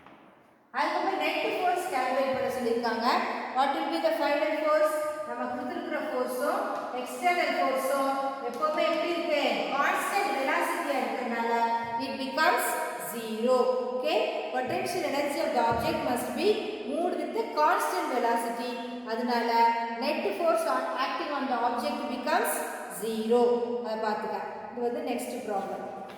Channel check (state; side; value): identical; both; correlation 1.00